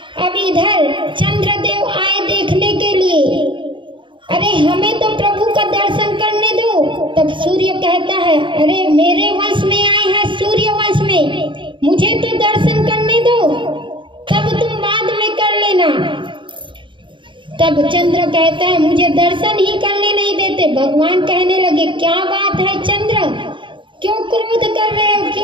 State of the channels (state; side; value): late; left; 0.24 ms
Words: अब इधर चंद्रदेव आए देखने के लिए, अरे हमें तो प्रभु का दर्शन करने दो। तब सूर्य कहता है अरे मेरे वंश में आए हैं, सूर्य वंश में, मुझे तो दर्शन करने दो, तब तुम बाद में कर लेना। तब चंद्र कहता है मुझे दर्शन ही करने नहीं देते। भगवान कहने लगे क्या बात है चंद्र, क्यों क्रोध कर रहे हो,